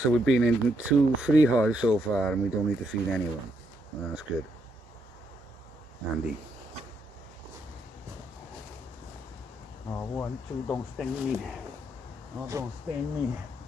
we've been in 2 free hives so far, and we don't need to feed any of them. Well, that's good. Handy. Oh, 1, 2, don't sting me. Oh, don't sting me.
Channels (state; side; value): normal; both; correlation 0.77